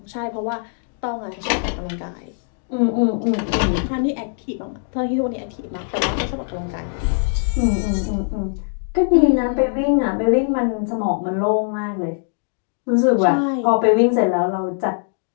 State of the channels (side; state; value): right; silent; 65 dB below the other